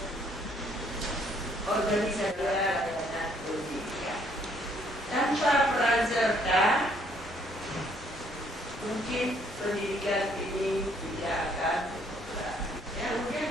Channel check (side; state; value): both; normal; correlation 0.66